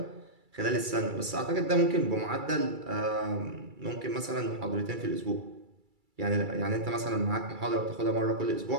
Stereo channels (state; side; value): late; left; 2.3 ms